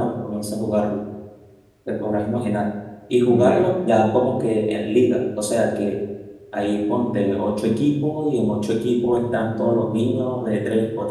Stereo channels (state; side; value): identical; both; correlation 1.00